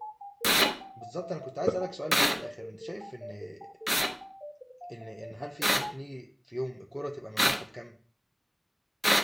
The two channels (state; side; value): identical; both; correlation 1.00